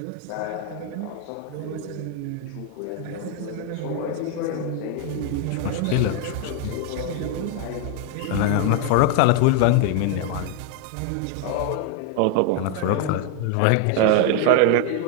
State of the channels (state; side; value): different; both; correlation 0.01